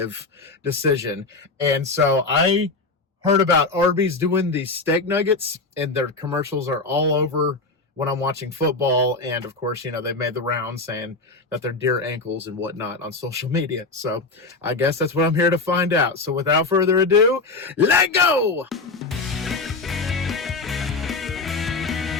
decision. And so I heard about Arby's doing these steak nuggets, and their commercials are all over when I'm watching football. And of course, you know, they've made the rounds saying that they're deer ankles and whatnot on social media. So I guess that's what I'm here to find out. So without further ado, let go!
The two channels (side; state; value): right; quieter; 3.6 dB